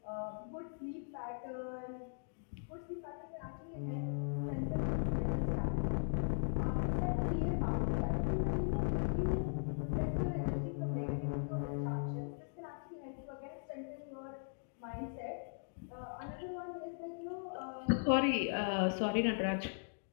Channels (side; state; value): right; silent; digital silence